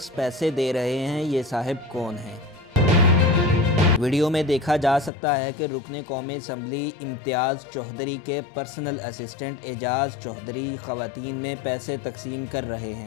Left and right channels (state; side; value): drops out; right; at 5.1 s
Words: پیسے دے رہے ہیں یہ صاحب کون ہیں۔ ویڈیو میں دیکھا جا سکتا ہے کہ رکن قومی اسمبلی امتیاز چودھری کے پرسنل اسسٹنٹ اعجاز چودھری خواتین میں پیسے تقسیم کر رہے